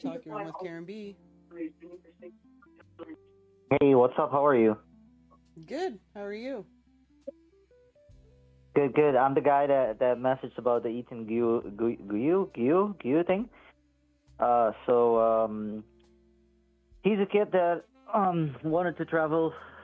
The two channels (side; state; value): both; identical; correlation 1.00